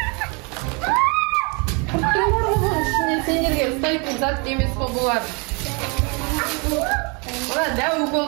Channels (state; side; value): quieter; left; 32.3 dB